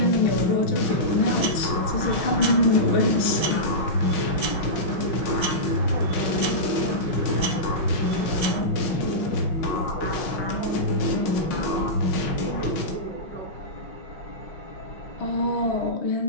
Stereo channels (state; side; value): late; right; 6.4 ms